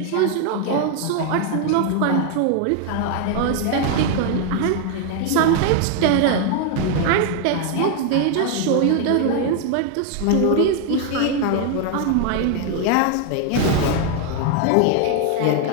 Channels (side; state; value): both; different; correlation 0.00